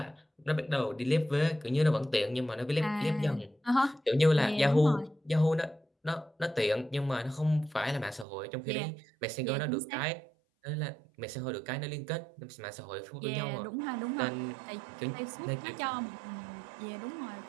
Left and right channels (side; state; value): left; drops out; at 8.2 s